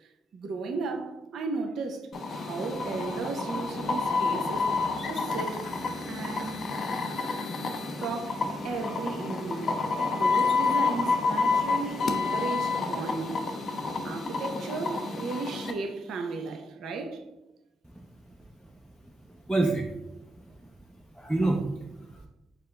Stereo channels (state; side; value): normal; both; correlation 0.79